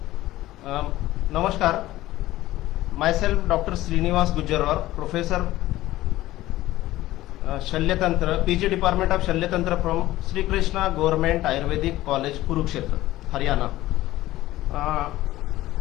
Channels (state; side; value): quieter; right; 16.1 dB